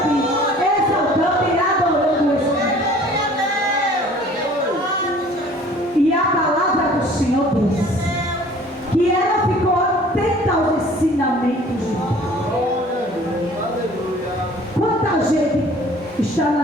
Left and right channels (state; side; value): normal; both; correlation 0.50